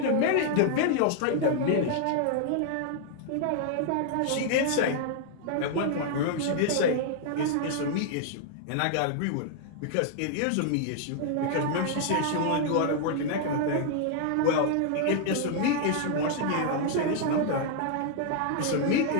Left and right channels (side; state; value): both; different; correlation 0.00